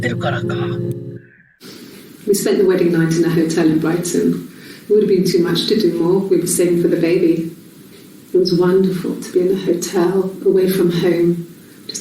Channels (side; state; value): both; identical; correlation 1.00